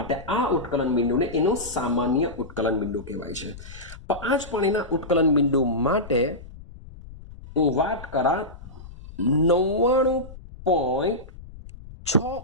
આ ઉત્કલન બિંદુને એનું સામાન્ય ઉત્કલન બિંદુ કહેવાય છે. તો આ જ પાણીના ઉત્કલન બિંદુ માટે હું વાત કરા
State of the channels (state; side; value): noise; left; rumble, 16 dB below the sound